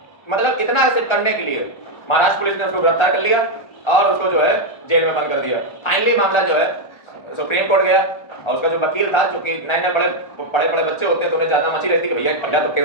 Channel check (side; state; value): right; late; 1.4 ms